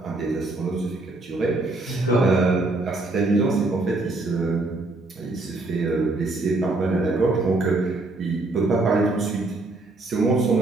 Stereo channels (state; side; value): quieter; left; 3.1 dB